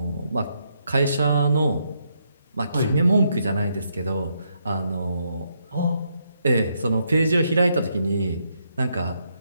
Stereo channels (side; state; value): both; inverted; correlation -0.77